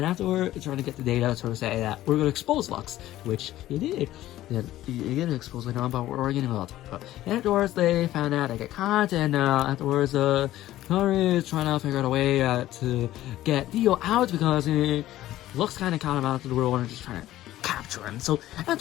afterward, they're trying to get the data to say that we're going to expose Lux, which they did. You get exposed later on, but we're getting about it. And afterwards, they found out they get caught, and afterwards, Tari is trying to figure out a way to get Theo out, because Lux kind of caught him out of the world and just trying to capture him. So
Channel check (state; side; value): quieter; right; 14.6 dB